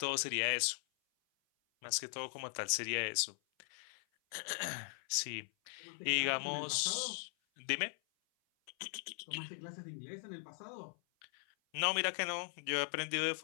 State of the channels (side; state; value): right; silent; 52 dB below the other